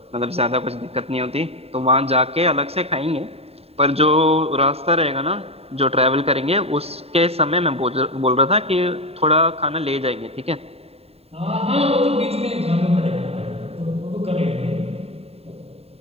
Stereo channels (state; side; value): late; left; 0.29 ms